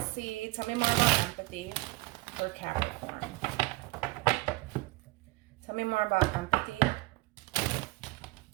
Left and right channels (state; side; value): quieter; left; 22.2 dB